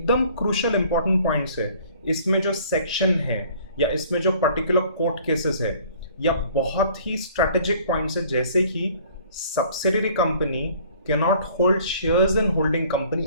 क्रूशियल इंपॉर्टेंट पॉइंट्स है, इसमें जो सेक्शन है या इसमें जो पर्टिकुलर कोर्ट केसेस है या बहुत ही स्ट्रेटेजिक पॉइंट्स है, जैसे कि subsidiary company can not hold shares in holding company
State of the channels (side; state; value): both; inverted; correlation -0.54